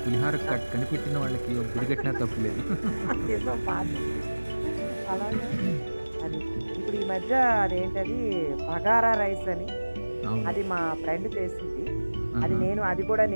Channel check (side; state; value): both; inverted; correlation -1.00